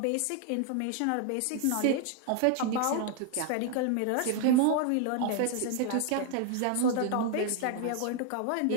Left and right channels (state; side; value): different; both; correlation 0.00